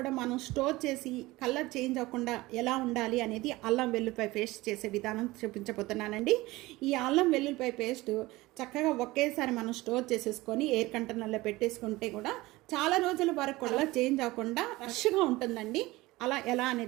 మనం స్టోర్ చేసి కలర్ చేంజ్ అవ్వకుండా ఎలా ఉండాలి అనేది అల్లం వెల్లుల్లిపాయ పేస్ట్ చేసే విధానం చూపించబోతున్నానండి. ఈ అల్లం వెల్లుల్లిపాయ పేస్ట్ చక్కగా ఒకేసారి మనం స్టోర్ చేసేసుకొని ఎయిర్ కంటైనర్లో పెట్టేసుకుంటే కూడా చాలా రోజుల వరకు కూడా చేంజ్ అవ్వకుండా ఫ్రెష్గా ఉంటుందండి. అలా ఎలా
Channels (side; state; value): left; quieter; 19.8 dB